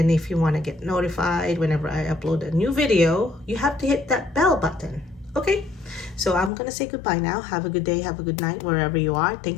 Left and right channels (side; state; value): right; drops out; at 6.5 s